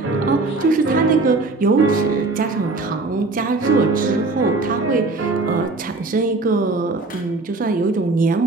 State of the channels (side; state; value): left; quieter; 3.4 dB